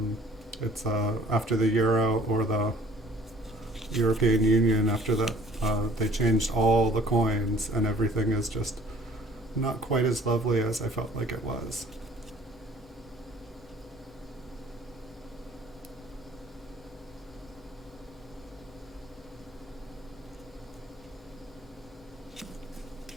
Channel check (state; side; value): normal; both; correlation 0.55